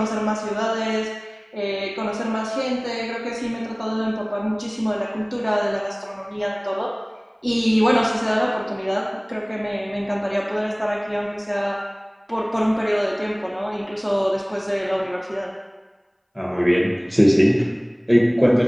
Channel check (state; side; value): identical; both; correlation 1.00